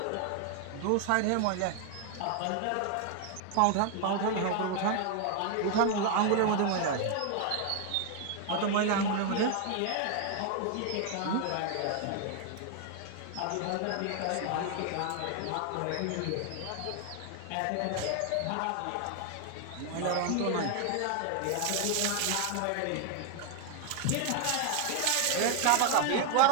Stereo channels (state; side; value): different; both; correlation 0.00